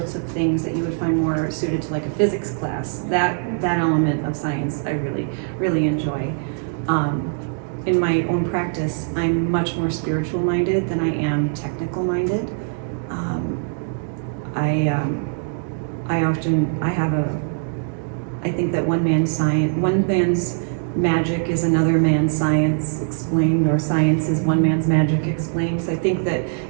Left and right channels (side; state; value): left; silent; 62 dB below the other